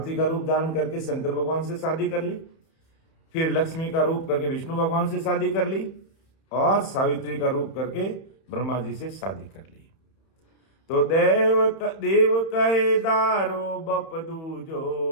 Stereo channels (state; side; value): late; right; 31 ms